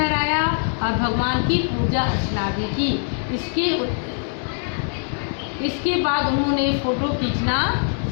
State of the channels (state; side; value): silent; right; digital silence